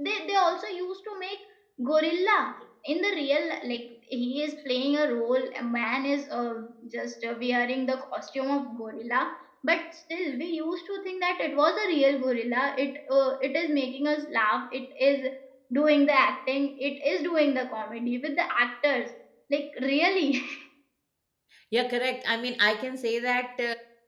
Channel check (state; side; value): identical; both; correlation 1.00